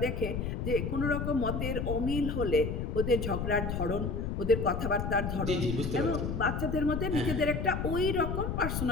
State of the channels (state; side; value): noise; left; rumble, 2 dB below the sound